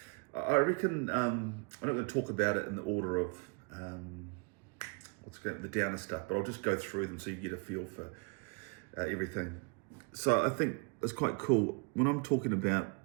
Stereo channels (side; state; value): left; quieter; 31.5 dB